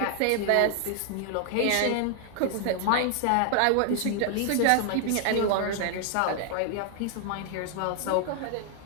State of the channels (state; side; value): different; both; correlation 0.00